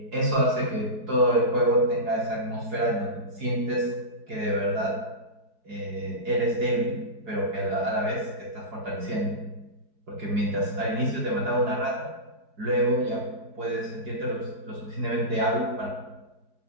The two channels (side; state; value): left; late; 4.8 ms